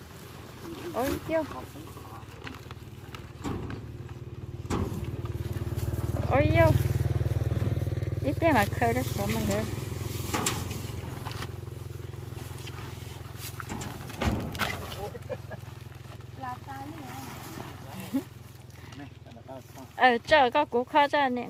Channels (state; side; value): identical; both; correlation 1.00